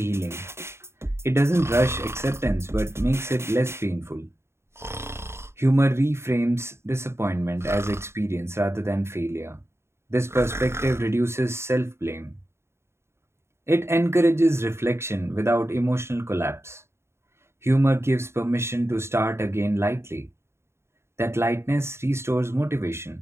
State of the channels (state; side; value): late; left; 0.13 ms